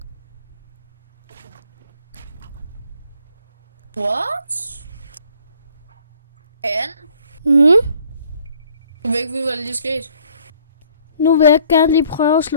What? Anne? Jeg ved ikke, hvad der lige skete. Nu vil jeg gerne lige prøve at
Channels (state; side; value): inverted; both; correlation -0.60